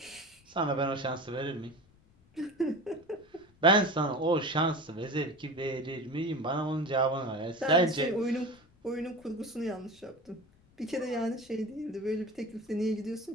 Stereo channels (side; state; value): left; noise; rumble, 30 dB below the sound